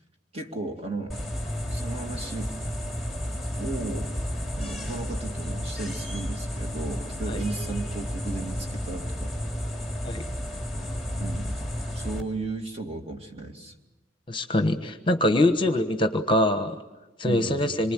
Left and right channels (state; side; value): normal; both; correlation 0.66